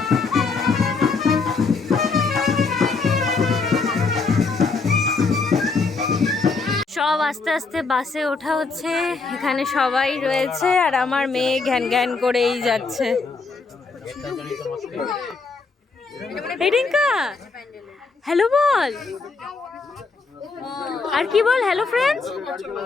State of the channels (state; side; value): quieter; right; 4.3 dB